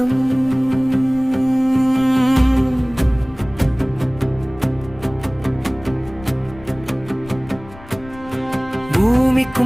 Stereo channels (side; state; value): left; noise; rumble, 19 dB below the sound